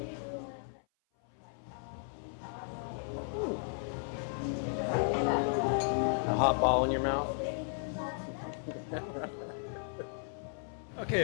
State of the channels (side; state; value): right; silent; 54 dB below the other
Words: A hot ball in your mouth.